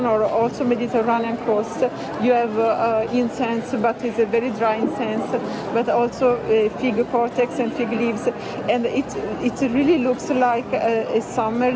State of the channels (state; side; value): identical; both; correlation 1.00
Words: or also Mediterranean coast. You have incense, but it's a very dry incense, but also fig cortex and fig leaves, and it really looks like a summer